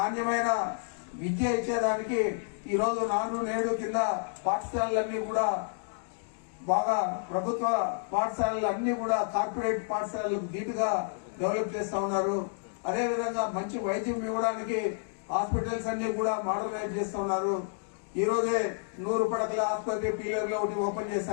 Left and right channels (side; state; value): right; silent; digital silence